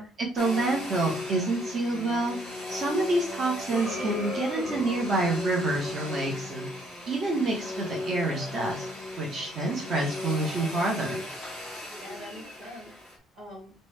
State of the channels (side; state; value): both; normal; correlation 0.66